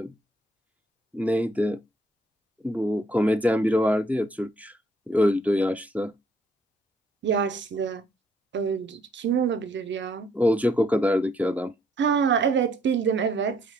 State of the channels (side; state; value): both; normal; correlation 0.67